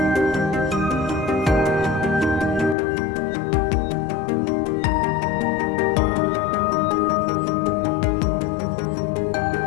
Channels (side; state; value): right; drops out; at 2.8 s